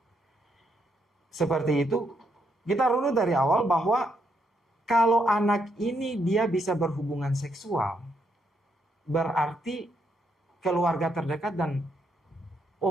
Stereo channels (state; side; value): normal; both; correlation 0.77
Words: seperti itu? Kita runut dari awal bahwa kalau anak ini dia bisa berhubungan seksual, berarti keluarga terdekat dan